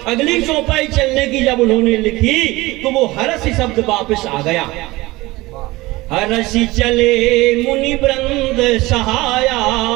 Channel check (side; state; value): left; quieter; 20.3 dB